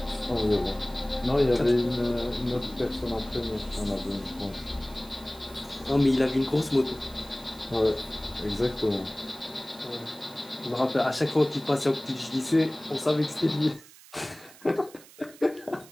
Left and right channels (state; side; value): noise; right; hiss, 21 dB below the sound